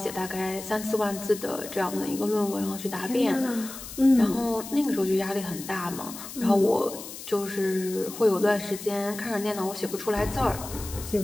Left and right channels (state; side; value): noise; left; hiss, 12 dB below the sound